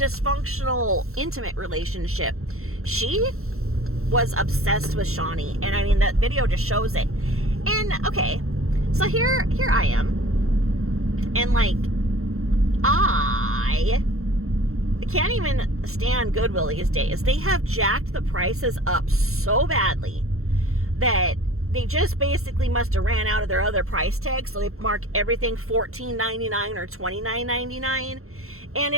intimate relationship. She was obsessed with Shani, and I mean, that video just shows it. And okay, so here I am, and like, I can't even stand Goodwill these days. They have jacked the prices up so badly that they just basically must have ran out of their other price tags, so they mark everything $14.99 or $29.99, and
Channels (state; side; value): late; left; 0.63 ms